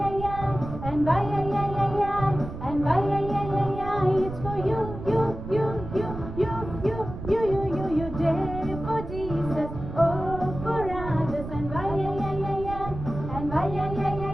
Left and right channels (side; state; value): right; noise; rumble, 9 dB below the sound